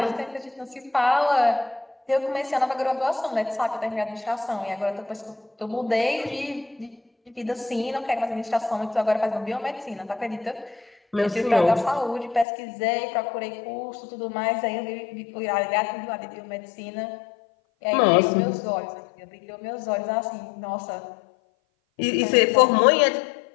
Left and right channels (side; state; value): right; drops out; at 12.5 s